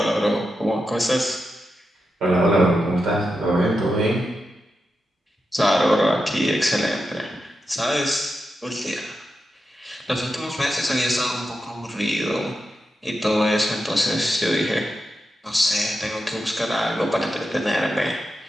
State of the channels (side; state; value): both; normal; correlation 0.88